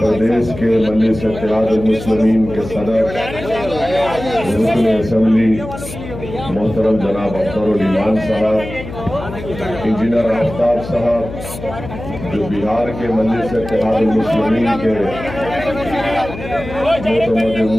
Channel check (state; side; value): noise; left; hum, 11 dB below the sound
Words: के मजलिस इत्तेहादुल मुस्लिमीन के सदर रुकन असेंबली मोहतरम जनाब अख्तरुल ईमान साहब, इंजीनियर आफ्ताब साहब जो बिहार के मजलिस इत्तेहादुल मुस्लिमीन के